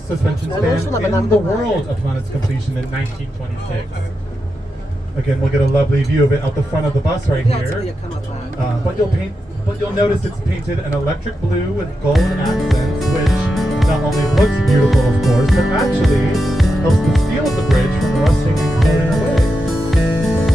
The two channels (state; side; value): normal; both; correlation 0.88